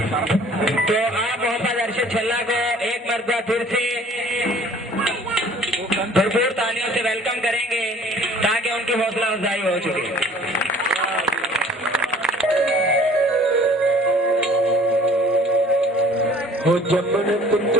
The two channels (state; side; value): normal; both; correlation 0.52